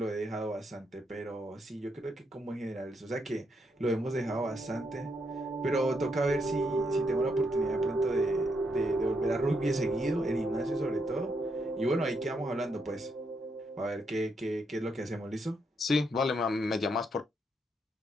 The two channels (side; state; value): both; normal; correlation 0.78